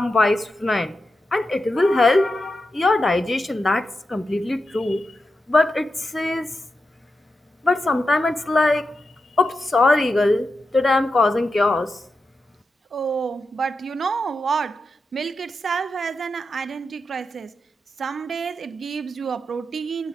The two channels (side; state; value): both; normal; correlation 0.89